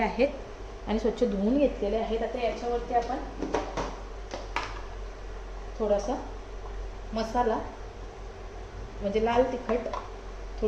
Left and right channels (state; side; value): identical; both; correlation 1.00